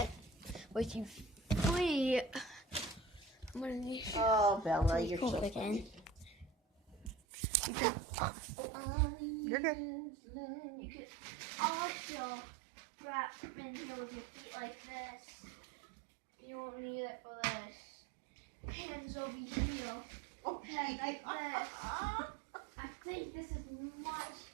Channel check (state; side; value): drops out; left; at 7.2 s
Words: with you free. I'm gonna need Oh, Bella, you're pull so it in. funny. You can You're good. you can also wrap in here with your feet like this. You won't need it for this. Hands over here. Oh, Head like this. I think this is much